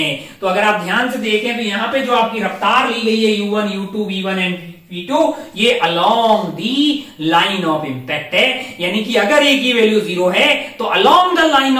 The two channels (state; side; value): identical; both; correlation 1.00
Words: तो अगर आप ध्यान से देखें तो यहां पे जो आपकी रफ्तार ली गई है U1 U2 V1 and V2, ये along the line of impact है। यानी कि अगर A की वैल्यू 0 है तो along the line